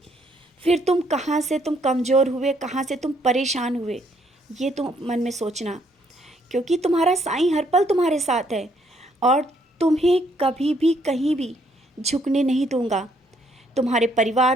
फिर तुम कहाँ से तुम कमज़ोर हुए, कहाँ से तुम परेशान हुए, ये तुम मन में सोचना। क्योंकि तुम्हारा साईं हर पल तुम्हारे साथ है, और तुम्हें कभी भी कहीं भी झुकने नहीं दूंगा। तुम्हारे परिवार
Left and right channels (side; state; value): both; normal; correlation 0.69